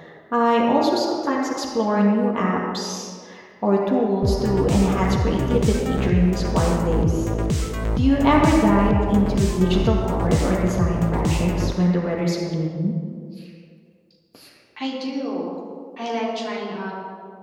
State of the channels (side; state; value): both; identical; correlation 1.00